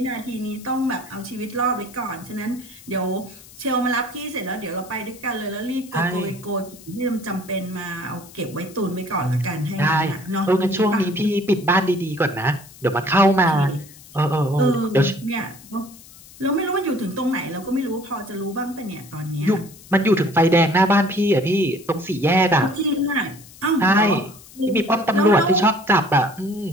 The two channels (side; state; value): left; noise; hiss, 21 dB below the sound